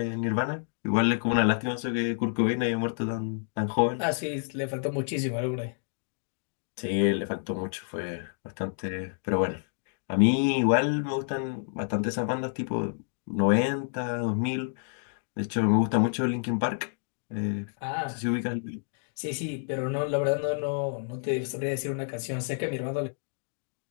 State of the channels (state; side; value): silent; right; digital silence